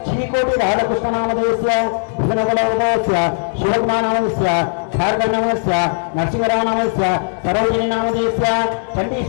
చీకోటి రాధాకృష్ణ నామదేశ్య భుజనగల గోత్రదేశ్య శివకుమార్ నామదేశ్య భార్గవ నామస్య నరసింహరావు నామస్య సరోజిని నామదేశ్య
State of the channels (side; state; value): right; silent; digital silence